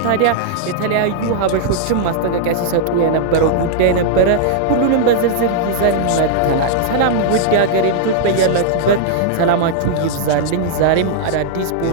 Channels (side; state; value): both; different; correlation -0.01